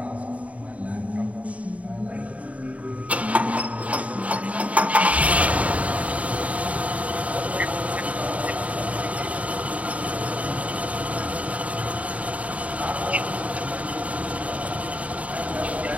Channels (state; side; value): late; left; 0.067 ms